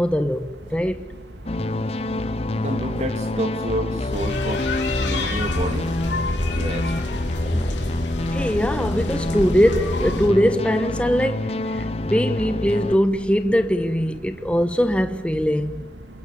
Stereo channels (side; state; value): both; normal; correlation 0.84